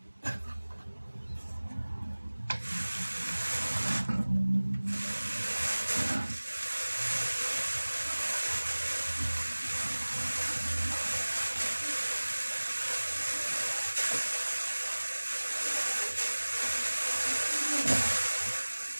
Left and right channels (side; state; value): both; inverted; correlation -1.00